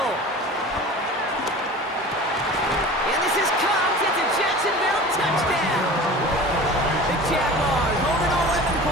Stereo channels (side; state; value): both; normal; correlation 0.38